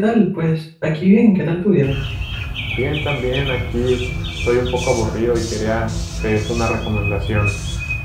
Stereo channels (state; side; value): identical; both; correlation 1.00